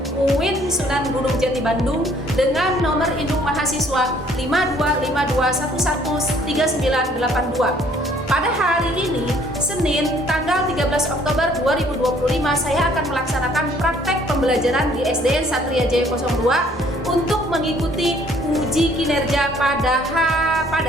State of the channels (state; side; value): normal; both; correlation 0.60